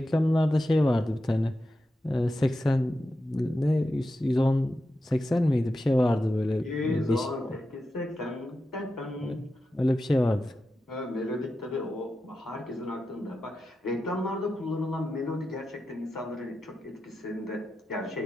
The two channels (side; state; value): both; normal; correlation 0.90